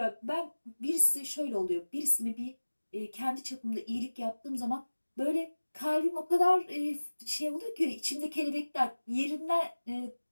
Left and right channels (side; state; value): both; inverted; correlation -1.00